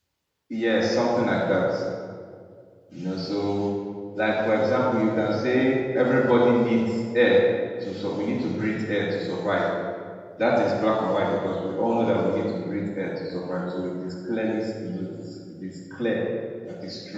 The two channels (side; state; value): both; identical; correlation 1.00